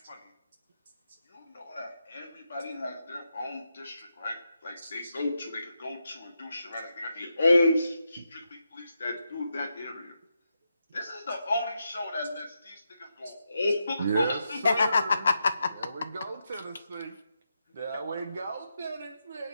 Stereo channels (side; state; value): both; inverted; correlation -0.85